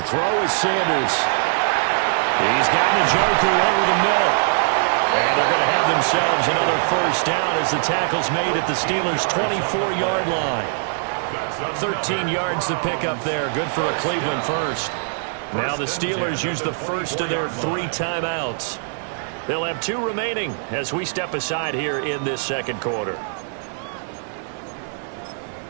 throw is Sanders. He's got Njoku over the middle. And they're going to have themselves another first down as the tackle's made at the Steelers' 24-yard line. 13 yards to pick up there. Good for a Cleveland first. Now the Steelers use the first of their 3 timeouts. They'll have 2 remaining as we step aside here in this second quarter.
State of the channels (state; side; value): silent; left; digital silence